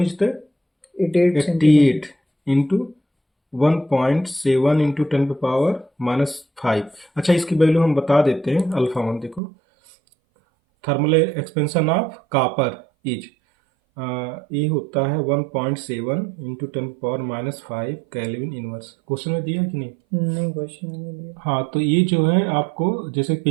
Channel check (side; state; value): left; drops out; at 9.4 s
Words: is the 88 into 1.7 into 10 पे पावर -5। अच्छा, इसकी वैल्यू हम बता देते हैं। अल्फा 1 देखो, thermal expansion of copper is, ये होता है 1.7 into 10 power -5 kelvin inverse. Question में दिया है कि नहीं? नहीं, क्वेश्चन में नहीं दिया। हाँ, तो ये जो है आपको जैसे